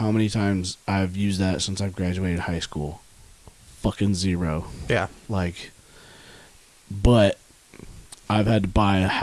many times I've used that since I've graduated high school. Fucking zero. Yeah. Like, but I've had to buy a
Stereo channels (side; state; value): both; identical; correlation 1.00